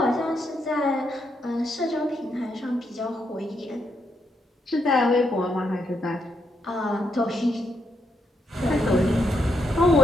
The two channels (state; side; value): normal; both; correlation 0.80